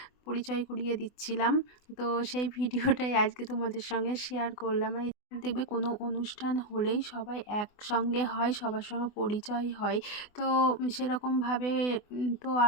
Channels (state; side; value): late; right; 24 ms